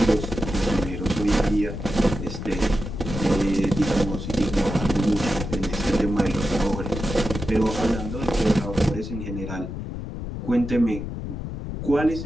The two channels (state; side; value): noise; left; rumble, 6 dB below the sound